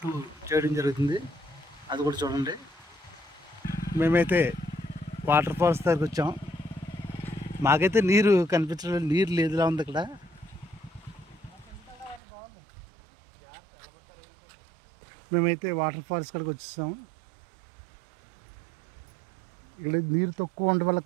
2 చేయడం జరుగుతుంది, అది కూడా చూడండి. మేమైతే వాటర్ ఫాల్స్ దగ్గరికి వచ్చాం. మాకైతే నీరు కనిపించడం, నీరు లేదులా ఉంది ఇక్కడ. మేమైతే వాటర్ ఫాల్స్ కాడికి వచ్చేసాం. ఇక్కడ నీరు తక్కువ ఉండడం వల్ల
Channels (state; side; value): drops out; left; at 12.2 s